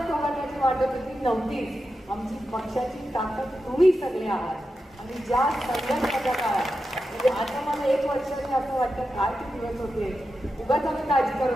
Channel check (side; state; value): both; normal; correlation 0.89